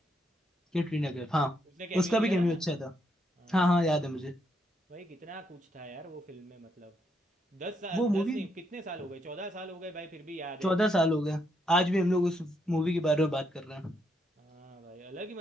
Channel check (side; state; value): both; normal; correlation 0.76